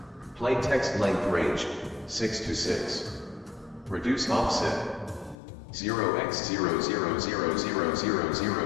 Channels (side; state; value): right; drops out; at 5.4 s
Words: Plain text length range, 6 to 6. Reduce offset.